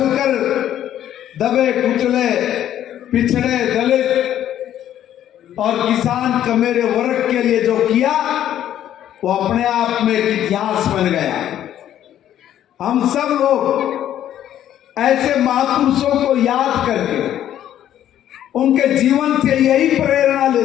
दबे कुचले पिछड़े दलित और किसान कमेरे वर्ग के लिए जो किया वो अपने आप में एक इतिहास बन गया। हम सब लोग ऐसे महापुरुषों को याद करके उनके जीवन से यही प्रेरणा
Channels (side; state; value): right; quieter; 11.3 dB